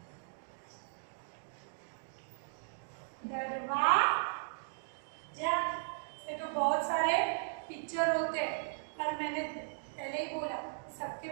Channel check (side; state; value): left; silent; digital silence